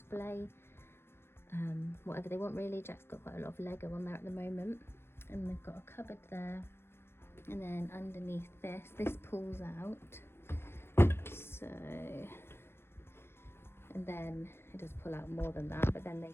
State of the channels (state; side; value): late; right; 0.12 ms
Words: whatever they want really. Jack's got quite a lot of Lego on there at the moment, and they've got a cupboard there, and then underneath this pulls out, so, and then it does pull out more than that, but then